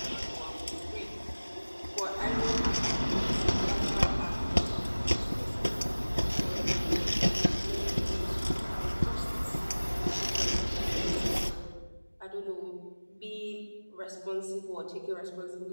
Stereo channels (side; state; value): both; inverted; correlation -1.00